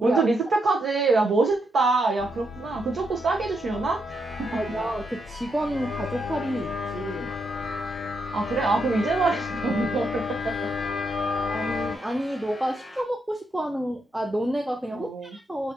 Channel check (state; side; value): normal; both; correlation 0.80